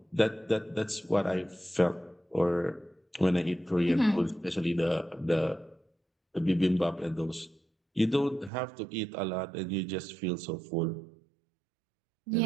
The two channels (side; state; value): left; drops out; at 8.5 s